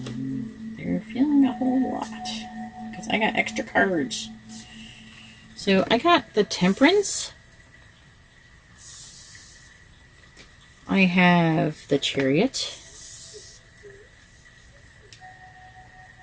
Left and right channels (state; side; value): identical; both; correlation 1.00